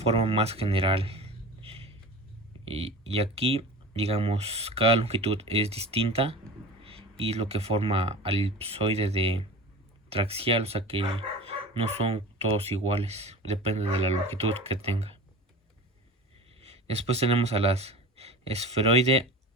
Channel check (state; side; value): normal; both; correlation 0.34